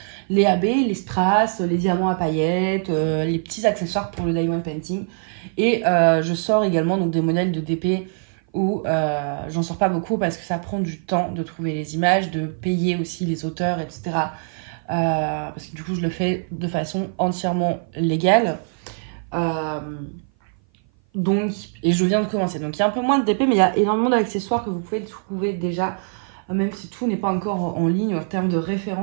les AB, les strass, les diamants à paillettes, les petits accessoires pour le diamond painting. Et je sors également donc, des modèles de DP où j'en sors pas beaucoup parce que ça prend du temps de trouver les images, de payer aussi les auteurs, etc. Parce que du coup, je le fais de façon entièrement légale. Et je viens de commencer. Donc, il y a un peu moins de DP, mais il y a énormément d'accessoires que vous pouvez trouver déjà, même si tout n'est pas encore en ligne en termes de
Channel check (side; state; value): left; silent; 57 dB below the other